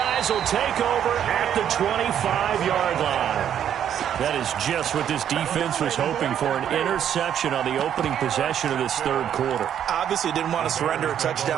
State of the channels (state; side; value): quieter; left; 9.6 dB